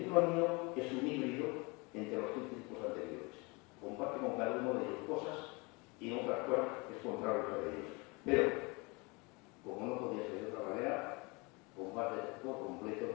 mío es un híbrido entre los tres tipos anteriores. Comparte con cada uno de ellos cosas y en otras cosas es contrario a ellos. Pero, como no podía ser de otra manera, comparte por completo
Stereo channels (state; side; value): quieter; right; 27.7 dB